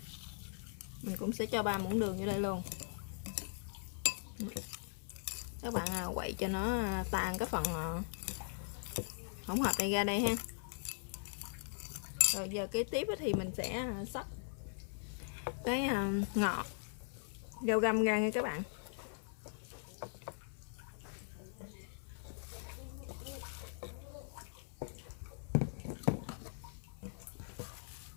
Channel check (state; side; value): silent; right; 51 dB below the other